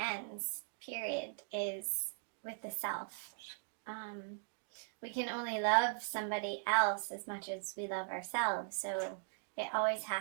period, is with the self. We can only love somebody else as much as we love ourselves, so it always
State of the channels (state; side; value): silent; left; digital silence